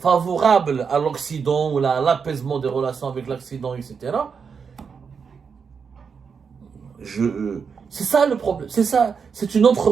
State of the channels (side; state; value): left; quieter; 6.0 dB